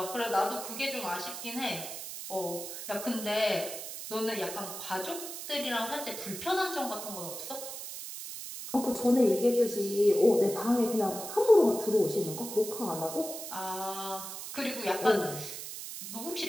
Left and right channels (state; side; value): noise; right; hiss, 8 dB below the sound